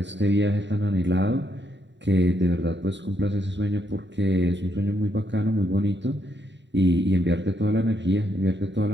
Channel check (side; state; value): left; late; 0.52 ms